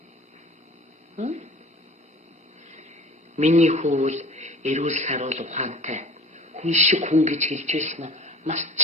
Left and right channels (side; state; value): both; normal; correlation 0.43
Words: Миний хүү эрүүл саруул ухаантай хүн шиг хүн гэж хэлж байсан нь